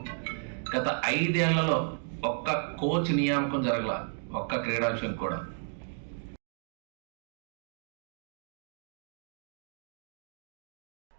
గత 5 ఏళ్లలో ఒక్క కోచ్ నియామకం జరగల, ఒక్క క్రీడాంశం కూడా.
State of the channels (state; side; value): silent; left; 56 dB below the other